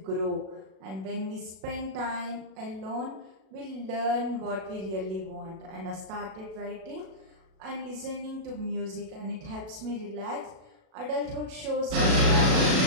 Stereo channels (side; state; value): left; late; 37 ms